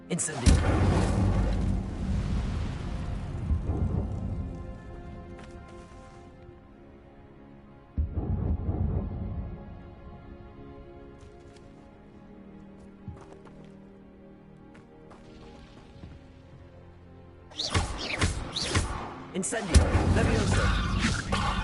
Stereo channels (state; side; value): identical; both; correlation 1.00